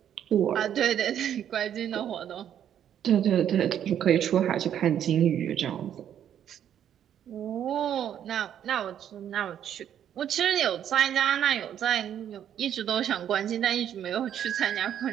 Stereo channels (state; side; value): quieter; left; 9.8 dB